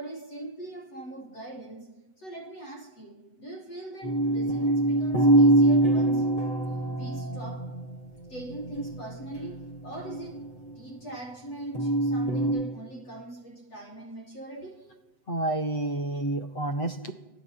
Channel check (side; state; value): right; late; 8.0 ms